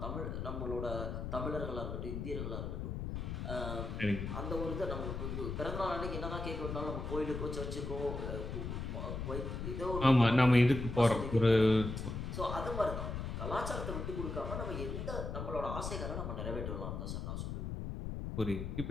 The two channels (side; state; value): left; noise; rumble, 4 dB below the sound